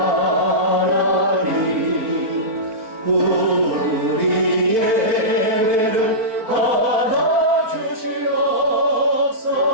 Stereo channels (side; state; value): left; late; 4.5 ms